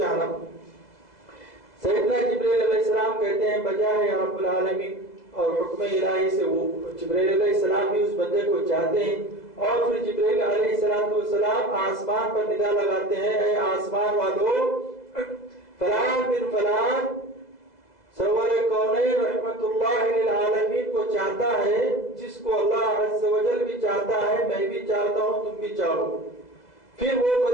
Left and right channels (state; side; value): late; right; 2.0 ms